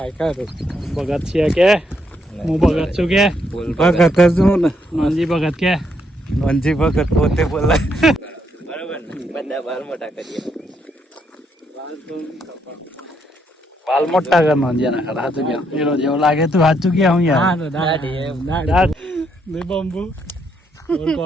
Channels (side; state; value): both; normal; correlation 0.75